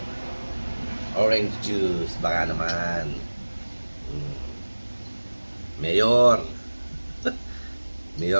orange juice. Baka naman. Mayor.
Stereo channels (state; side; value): inverted; both; correlation -1.00